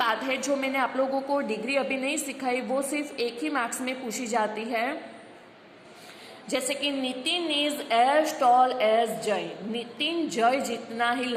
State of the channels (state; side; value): identical; both; correlation 1.00